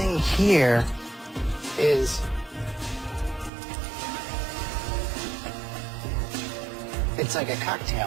here is it's like a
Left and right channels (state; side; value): drops out; left; at 3.5 s